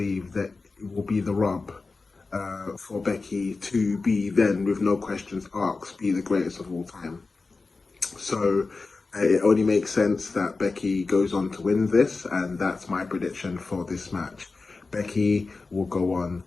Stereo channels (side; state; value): right; quieter; 3.9 dB